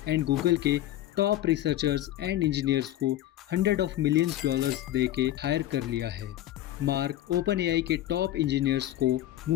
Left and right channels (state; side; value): quieter; right; 13.7 dB